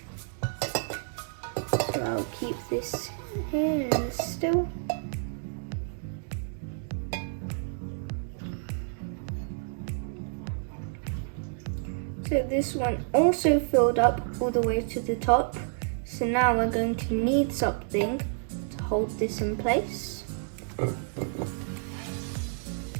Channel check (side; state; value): left; silent; digital silence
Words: So I'll keep this here still. So this one also filled up all the way to the top. So now we're going to need something to hold this in place. And